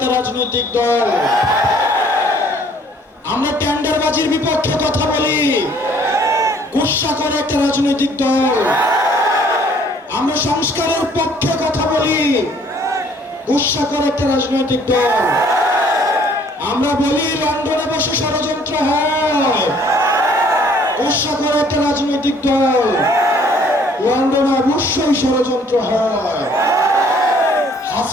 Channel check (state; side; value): normal; both; correlation 0.59